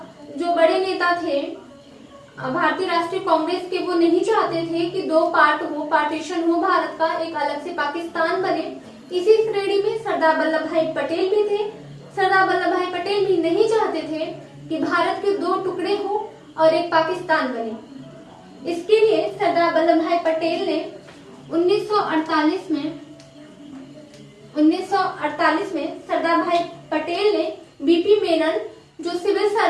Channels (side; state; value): both; identical; correlation 1.00